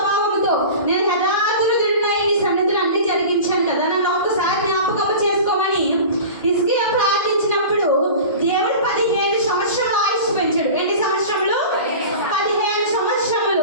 నేను యథార్థుడునై నీ సన్నిధిలో అన్ని జరిగించాను కదా, నన్ను ఒకసారి జ్ఞాపకం చేసుకోమని హిజ్కియా ప్రార్థించినప్పుడు దేవుడు 15 సంవత్సరాలు ఆయుష్ పెంచాడు. ఎన్ని సంవత్సరములు? 15 సంవత్సరములు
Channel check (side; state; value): both; inverted; correlation -0.36